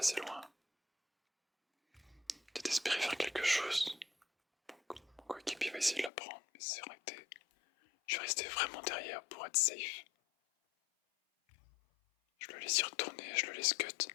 loin. Peut-être espérer faire quelque chose. Mon coéquipier va essayer de la prendre, mais c'est raté. Je vais rester vraiment derrière pour être safe. Je le laisse y retourner, je le laisse cut.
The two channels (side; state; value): right; drops out; at 6.1 s